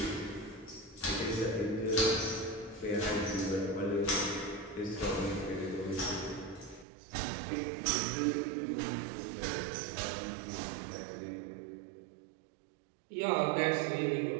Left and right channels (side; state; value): left; drops out; at 6.9 s